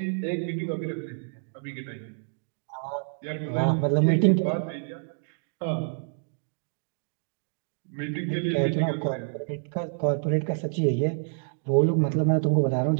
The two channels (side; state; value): left; silent; digital silence